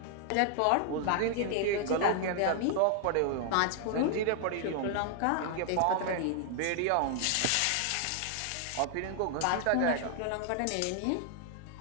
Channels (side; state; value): both; different; correlation 0.00